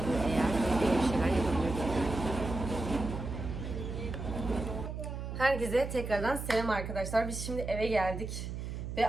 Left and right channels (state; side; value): noise; right; hum, 6 dB below the sound